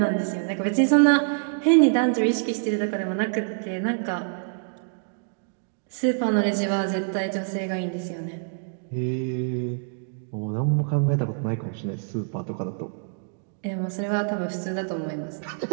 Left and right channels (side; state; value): left; silent; digital silence